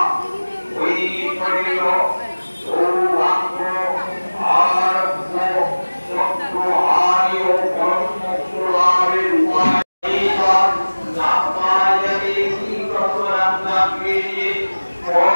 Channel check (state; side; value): inverted; both; correlation -1.00